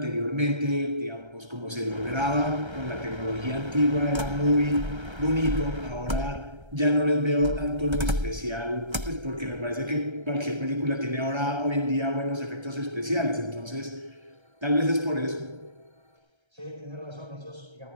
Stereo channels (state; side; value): late; left; 1.3 ms